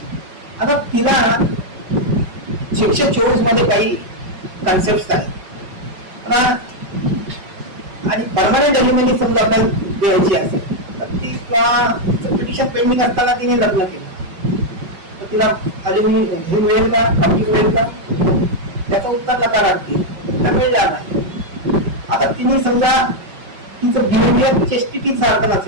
आता तिला 624 मध्ये काही कन्सेप्ट आहेत आणि परमनंट अलिमिनी समजा आपल्याला द्यायची असेल तर ती किंवा पिटिशन पेंडिंग असताना तिने लग्न केलं तर तिला अलिमिनी हे मिळेल का, खावती मिळेल का? त्याचं उत्तर नकारार्थी, मिळणार नाही. आता तिने समजा तिचं बिहेवियर चेस्टिटी सारखं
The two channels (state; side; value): late; left; 5.4 ms